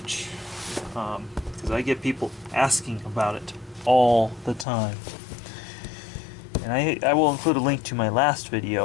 Because I get people asking about it all the time. And I will include a link to my last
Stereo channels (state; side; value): drops out; right; at 4.7 s